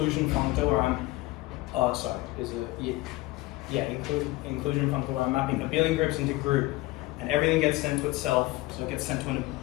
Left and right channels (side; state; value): right; quieter; 19.9 dB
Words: functor where I'm, inclusion functor where I'm mapping abelian groups into group, and everything gets sent to itself, so it gets sent to